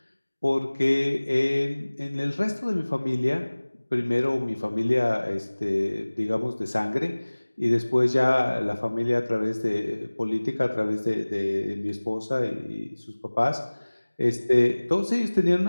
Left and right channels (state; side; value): inverted; both; correlation -1.00